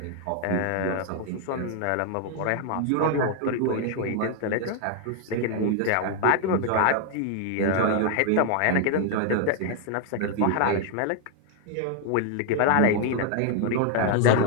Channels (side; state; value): both; different; correlation 0.00